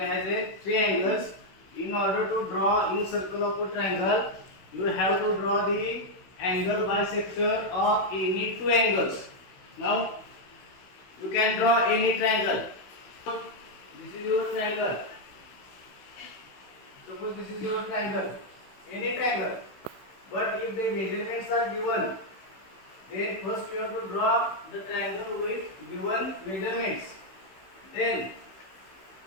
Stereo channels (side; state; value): right; late; 16 ms